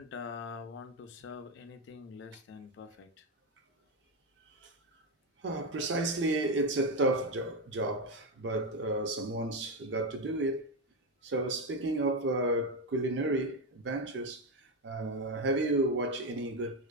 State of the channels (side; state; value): both; normal; correlation 0.09